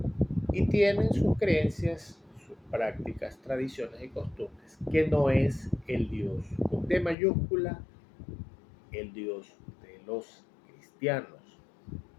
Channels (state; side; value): drops out; right; at 7.2 s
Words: Y tienen sus creencias, sus prácticas, tradiciones y costumbres, que no es el Dios con D mayúscula, el Dios de los cristianos.